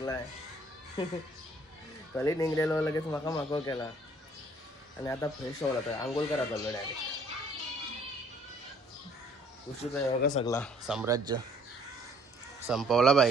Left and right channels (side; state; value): both; normal; correlation 0.60